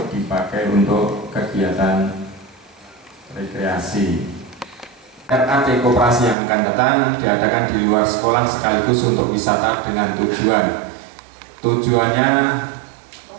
dipakai untuk kegiatan rekreasi. RAT koperasi yang akan datang diadakan di luar sekolah sekaligus untuk wisata dengan tujuan. Tujuannya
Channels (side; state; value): left; drops out; at 6.4 s